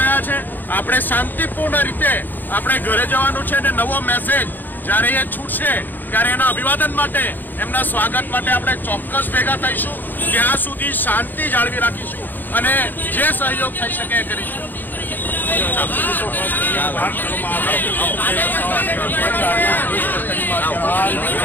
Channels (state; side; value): late; right; 0.088 ms